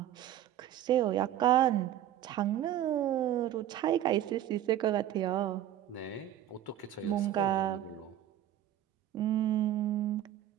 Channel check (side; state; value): left; quieter; 11.9 dB